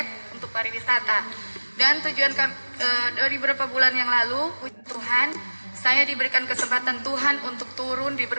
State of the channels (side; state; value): both; inverted; correlation -1.00